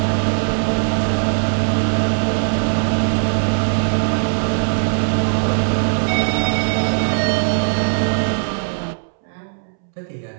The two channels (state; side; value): silent; left; 67 dB below the other